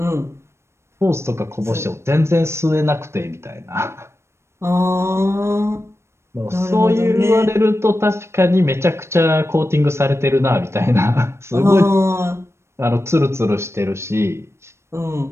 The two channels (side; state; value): left; late; 0.13 ms